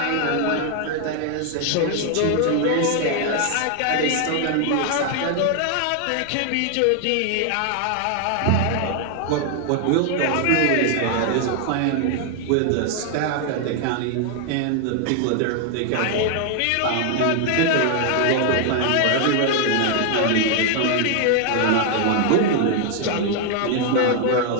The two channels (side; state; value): both; different; correlation 0.00